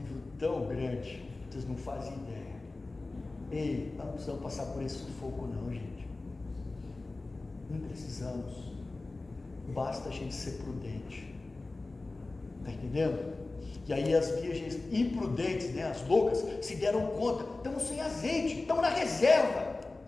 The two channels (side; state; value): right; quieter; 3.3 dB